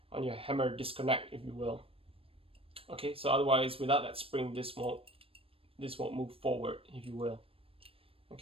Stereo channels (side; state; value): left; late; 0.27 ms